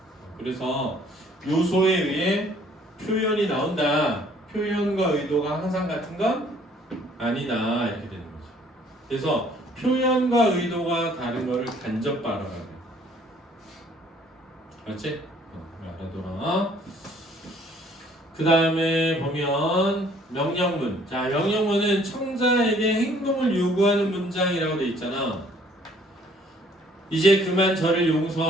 그래서 요소에 의해 표현이 나온다. 표현과 의도가 항상 같은 건 아니다. 이렇게 되는 거죠. 그래서 표현과 의도가 다른 거를 간접 발언하래. 그렇지? 알아둬라. 그 다음에 보면 명령문. 자, 명령문은 청자에게 행동을 요구하는 문장이라고 돼 있잖아. 이제 그만 저를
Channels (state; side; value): normal; both; correlation 0.59